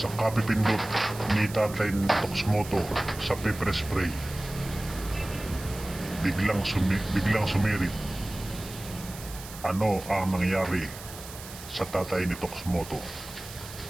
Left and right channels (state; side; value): noise; right; hiss, 14 dB below the sound